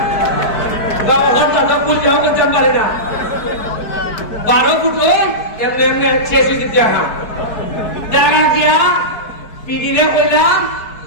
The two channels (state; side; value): late; right; 4.6 ms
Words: পারি না, 12 ফুট ওই এমনি এমনি শেষ হয়ে দিতে দেখা গিয়া পিডিলে কইলাম